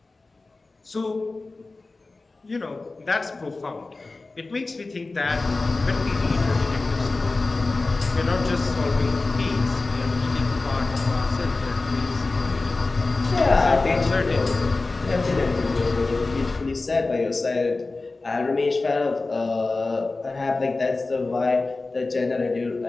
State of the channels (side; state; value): right; quieter; 3.5 dB